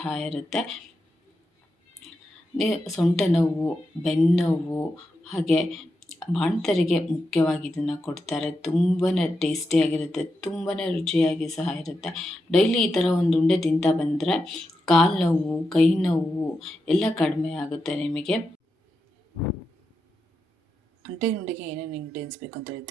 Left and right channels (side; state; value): both; normal; correlation 0.87